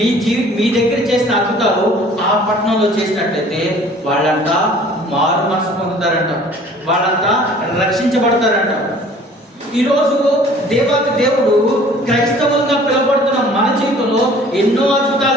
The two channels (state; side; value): normal; both; correlation 0.51